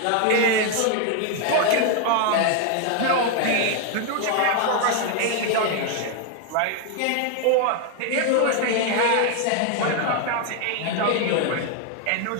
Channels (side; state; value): both; different; correlation 0.01